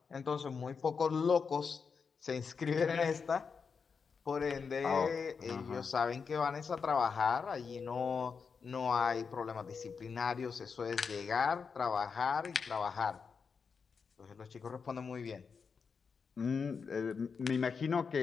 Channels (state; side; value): quieter; right; 5.6 dB